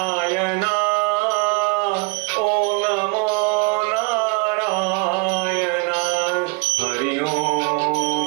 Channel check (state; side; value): quieter; left; 30.2 dB